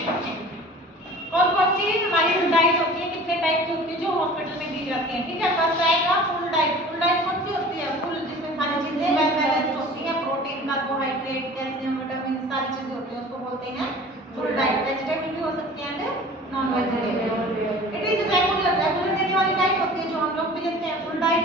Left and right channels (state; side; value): normal; both; correlation 0.43